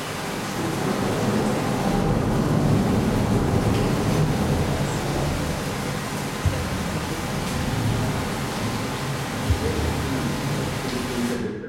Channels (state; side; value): identical; both; correlation 1.00